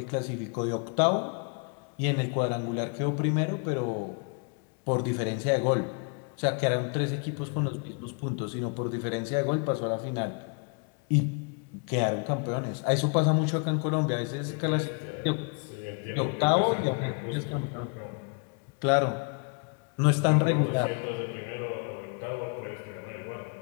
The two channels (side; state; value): right; quieter; 38.0 dB